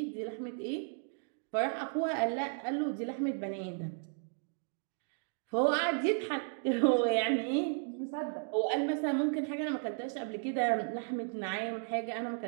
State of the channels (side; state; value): left; silent; 55 dB below the other